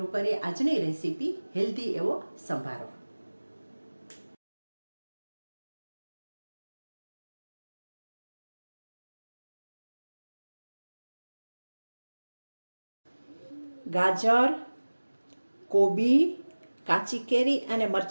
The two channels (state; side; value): inverted; both; correlation -1.00